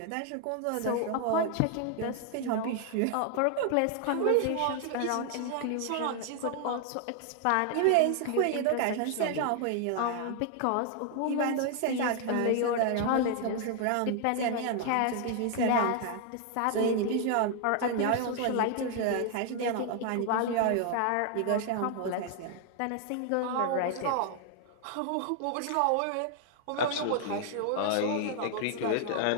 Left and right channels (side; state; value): both; different; correlation 0.00